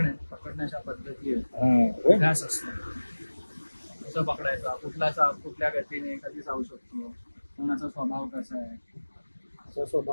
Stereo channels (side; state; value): both; inverted; correlation -1.00